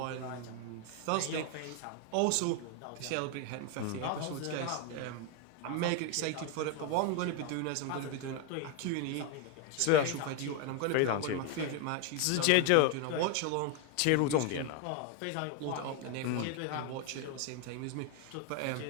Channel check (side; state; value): both; different; correlation 0.01